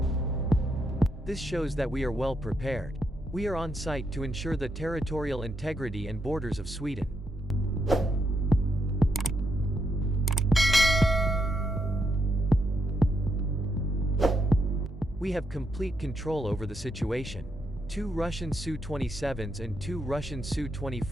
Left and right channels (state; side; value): normal; both; correlation 0.80